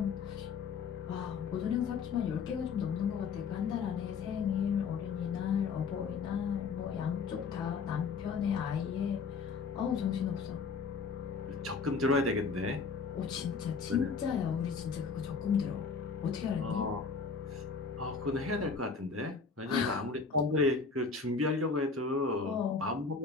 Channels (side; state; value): right; quieter; 5.1 dB